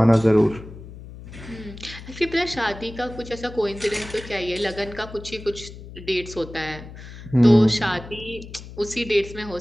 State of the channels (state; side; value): noise; left; hum, 15 dB below the sound